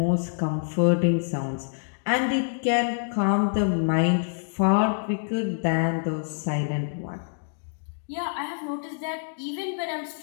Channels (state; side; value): silent; right; digital silence